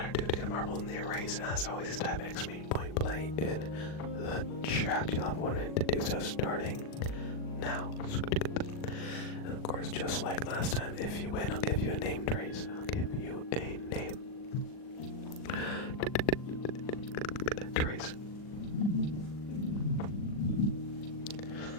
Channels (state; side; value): late; right; 40 ms